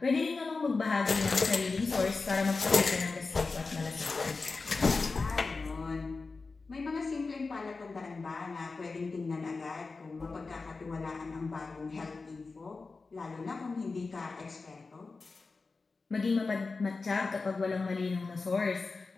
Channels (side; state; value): right; quieter; 4.1 dB